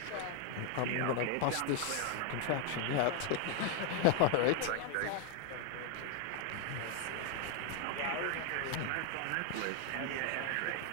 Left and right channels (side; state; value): both; different; correlation 0.00